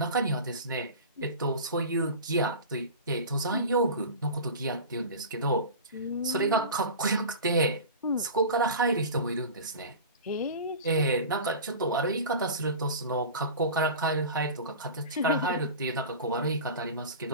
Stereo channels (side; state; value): both; inverted; correlation -0.33